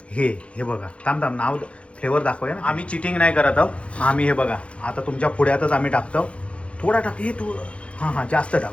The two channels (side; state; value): right; late; 0.061 ms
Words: हे बघा. थांब नाव फ्लेवर दाखवूया ना. आम्ही चिटिंग नाही करत आहोत. आम्ही हे बघा आता तुमच्या पुढ्यातच आम्ही टाकतो. थोडा टाक. हे तू हां जास्त